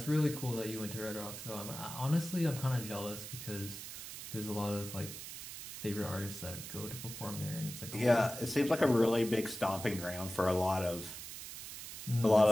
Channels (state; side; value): noise; right; hiss, 10 dB below the sound